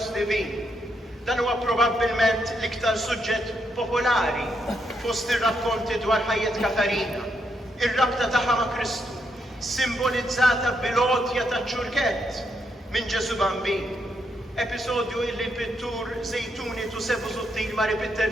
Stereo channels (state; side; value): normal; both; correlation 0.79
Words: Divin. Dan huwa probabbilment l-iktar suġġett popolari fost ir-rakkonti dwar ħajjet Katarina. Ir-rabta tagħha ma' Kristu, simbolizzata bil-għotja ta' ċurkett minn Ġesu Bambin. Episodju illi l-pittur Zejtuni Tusebu Zuttil ma ripitter